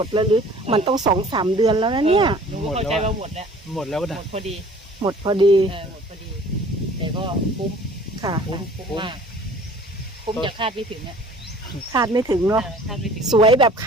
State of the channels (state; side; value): normal; both; correlation 0.49